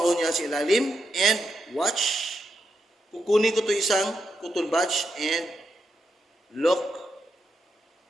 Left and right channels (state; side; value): normal; both; correlation 0.84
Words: niya sa ilalim and watch. Kukunin ko to isang cotton buds and look.